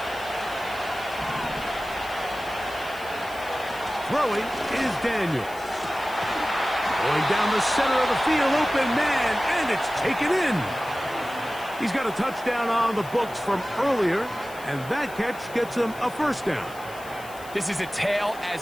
Throwing is Daniel. Going down the center of the field, open man, and it's taken in. He's got a touchdown on the books from earlier, and that catch gets him a 1st down. This is a tale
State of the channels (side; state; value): left; noise; hiss, 20 dB below the sound